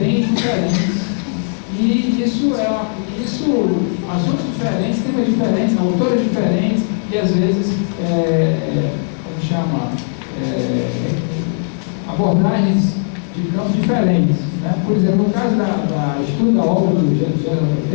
diferentes. E assuntos diferentes, temas diferentes, autores diferentes, e às vezes, abordagens de campos diferentes. Né? Por exemplo, no caso da estudo da obra do Geraldo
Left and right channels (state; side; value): silent; right; digital silence